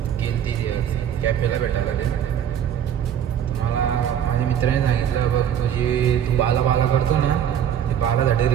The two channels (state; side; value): quieter; left; 9.5 dB